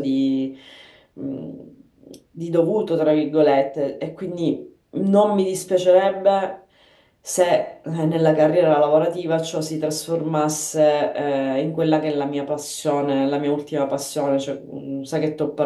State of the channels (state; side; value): identical; both; correlation 1.00